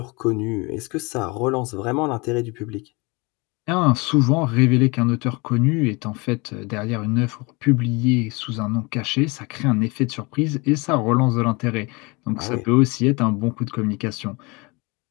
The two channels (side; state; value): right; quieter; 27.0 dB